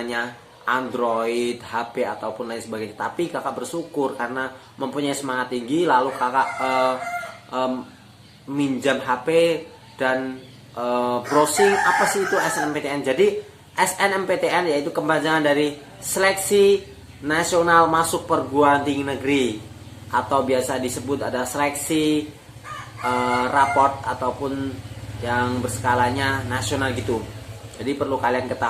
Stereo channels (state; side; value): identical; both; correlation 1.00